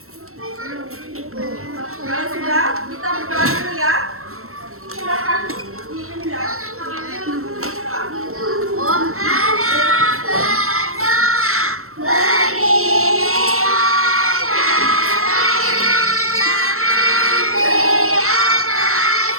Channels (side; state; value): left; late; 0.63 ms